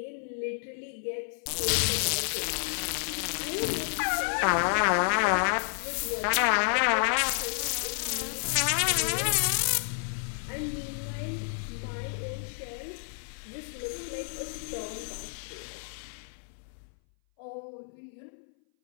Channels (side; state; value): right; silent; 58 dB below the other